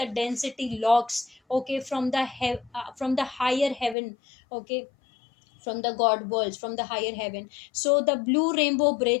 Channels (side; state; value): right; drops out; at 4.0 s